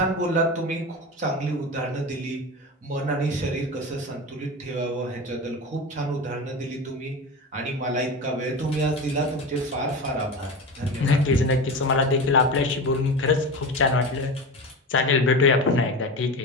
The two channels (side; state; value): both; normal; correlation 0.26